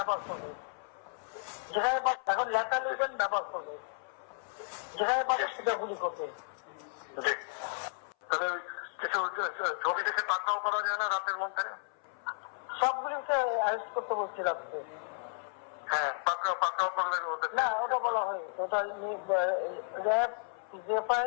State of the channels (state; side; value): silent; right; 56 dB below the other